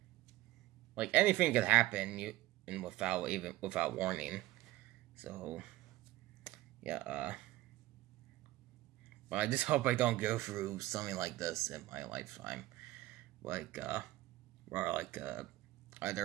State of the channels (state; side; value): quieter; left; 17.0 dB